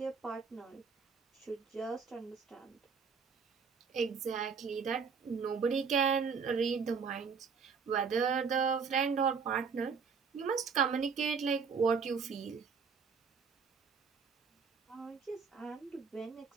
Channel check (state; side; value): quieter; left; 5.8 dB